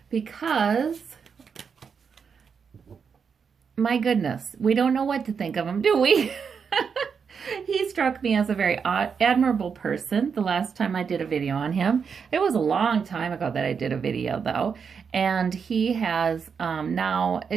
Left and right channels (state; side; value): quieter; left; 6.3 dB